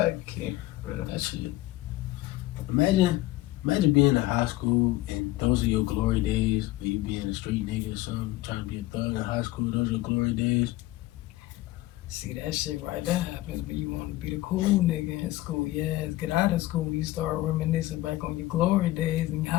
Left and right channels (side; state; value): right; quieter; 17.0 dB